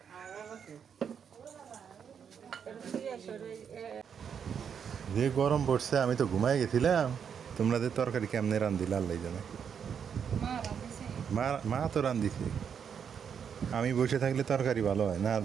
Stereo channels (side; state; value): left; quieter; 7.4 dB